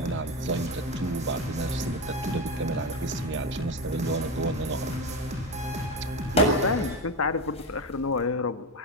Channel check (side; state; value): both; normal; correlation 0.17